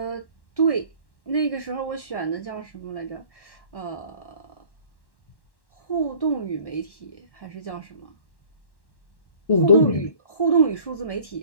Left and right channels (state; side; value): late; right; 1.1 ms